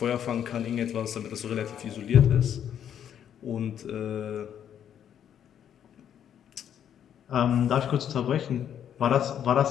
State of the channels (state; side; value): quieter; right; 9.4 dB